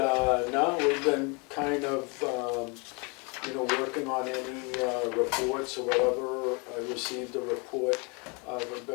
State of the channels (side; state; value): right; quieter; 31.9 dB